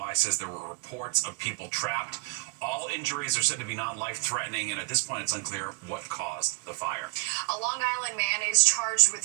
says there were reports of people trapped. All injuries are said to be non-life-threatening, and at this point it's unclear what caused the fire. A Long Island man is charged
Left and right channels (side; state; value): left; quieter; 24.7 dB